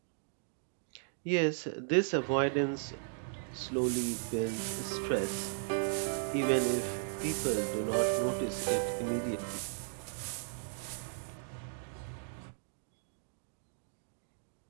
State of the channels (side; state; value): left; silent; digital silence